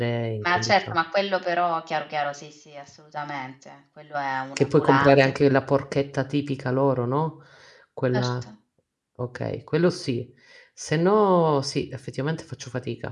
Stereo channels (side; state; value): both; identical; correlation 1.00